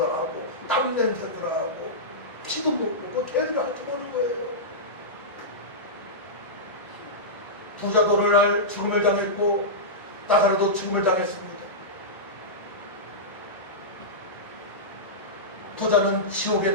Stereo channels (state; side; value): normal; both; correlation -0.14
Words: 나고 땀 냄새도 나고 피도 묻고 걔들이 핥아보는 거예요. 부자도 오늘날 죽음을 당했고 나사로도 죽음을 당했습니다. 부자는 지옥에